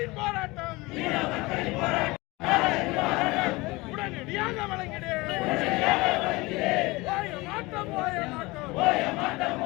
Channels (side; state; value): right; quieter; 22.7 dB